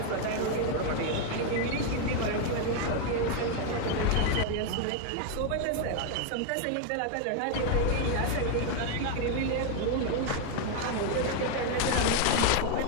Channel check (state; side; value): different; both; correlation 0.01